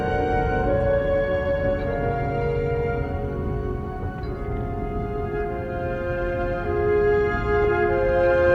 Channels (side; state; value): both; identical; correlation 1.00